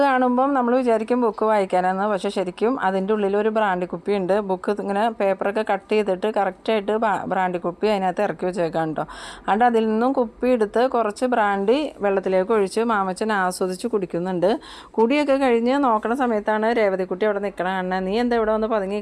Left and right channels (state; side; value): identical; both; correlation 1.00